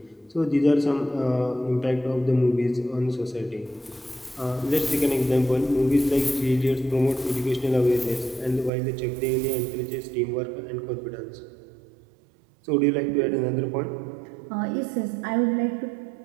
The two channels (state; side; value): drops out; left; at 8.7 s